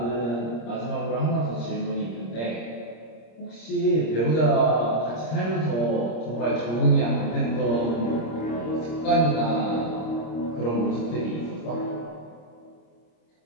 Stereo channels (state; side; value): late; right; 26 ms